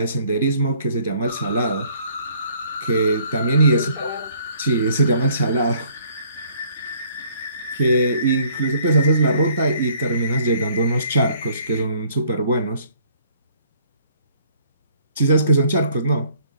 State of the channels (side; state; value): both; inverted; correlation -0.61